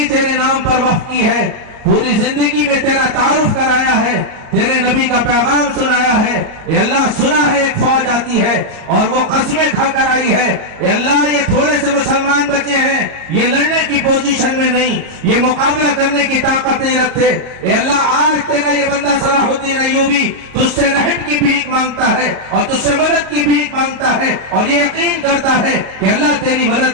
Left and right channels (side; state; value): left; late; 38 ms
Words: تیرے نام پر وقف کی ہے، پوری زندگی میں تیرا تعارف کرایا ہے، تیرے نبی کا پیغام سنایا ہے، اے اللہ سنا ہے ایک فوج آتی ہے اور وہ قسمیں کھا کر آئی ہے، اے اللہ یہ تھوڑے سے مسلمان بچے ہیں، یہ لڑنے کی پوزیشن میں نہیں، یہ مقابلہ کرنے کی طاقت نہیں رکھتے، اے اللہ آج تیرا یہ بندہ صلاح الدین ایوبی تجھ سے رحم کی بھیک مانگتا ہے اور تجھ سے مدد کی بھیک مانگتا ہے، اور یہ یقین کرتا ہے کہ اللہ تیری